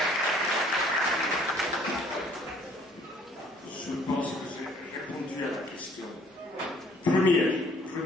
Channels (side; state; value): both; normal; correlation 0.59